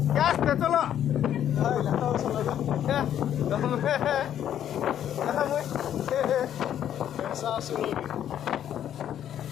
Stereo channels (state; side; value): quieter; right; 10.4 dB